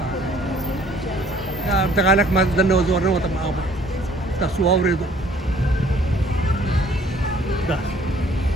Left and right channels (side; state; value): both; normal; correlation 0.57